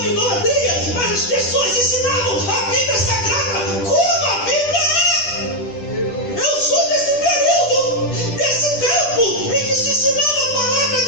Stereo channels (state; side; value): late; right; 10 ms